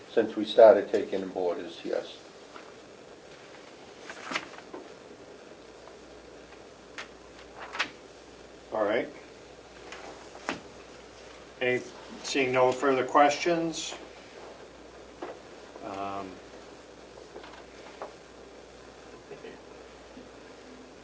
Since we started taking in boarders, yes. All right. Seeing no further questions?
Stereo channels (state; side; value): identical; both; correlation 1.00